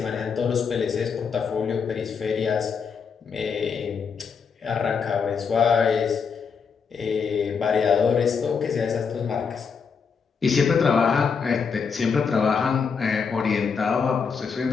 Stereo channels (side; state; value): right; quieter; 6.0 dB